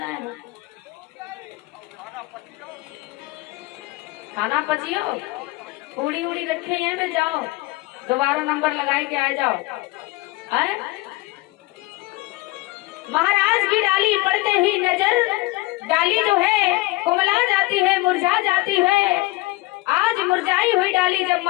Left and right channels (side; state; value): right; quieter; 21.0 dB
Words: है। खाना पचियो, पूड़ी उड़ी रखे हैं में जाओ, दोबारा नंबर लगाए के आ जाओ। है महाराज की डाली पड़ते ही नजर, डाली जो है कुमला जाती है, मुरझा जाती है। आज मुरझाई हुई डाली जब